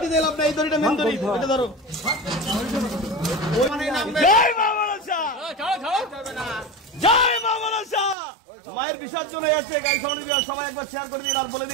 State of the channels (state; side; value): drops out; left; at 8.2 s